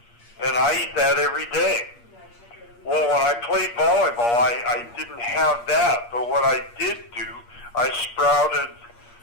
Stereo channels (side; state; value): right; late; 8.5 ms